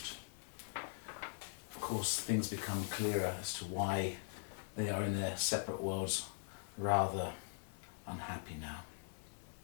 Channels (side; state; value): right; silent; 50 dB below the other